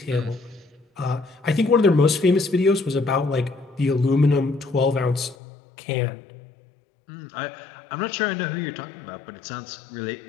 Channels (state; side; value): drops out; right; at 5.4 s